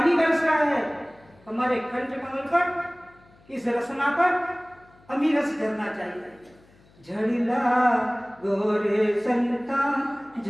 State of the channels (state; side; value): noise; left; hum, 29 dB below the sound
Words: बरस रहा है, हमारे कंठ कमल पर, इस रसना पर अमी रस झरना चाहिए। झड़िला गोरे संता